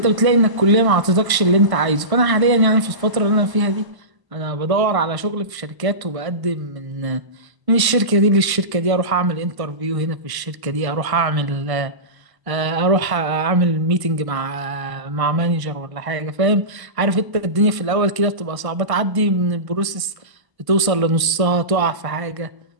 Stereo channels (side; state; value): left; late; 1.0 ms